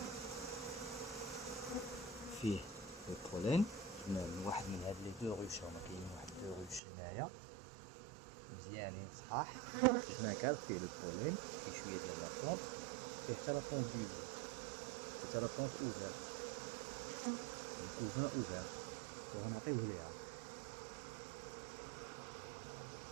فيه البولين، جبنا من واحد من هاد لي دو روش، هما كاينين واحد دو روش هنايا مزيانين صحاح. جبنا كادر فيه البولين، فيه شويه ديال لاطونط، فيه حتى لاطونط بيزو، فيه حتى لاطونط اوفيرت، الكوفان اوفير، وغنعطيوه ليها.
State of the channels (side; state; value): left; drops out; at 6.8 s